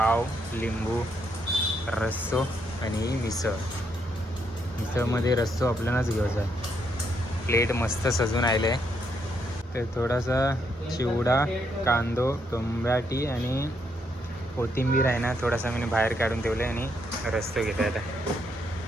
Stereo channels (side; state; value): both; normal; correlation 0.76